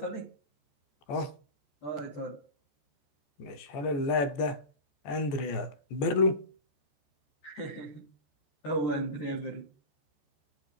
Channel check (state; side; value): late; right; 14 ms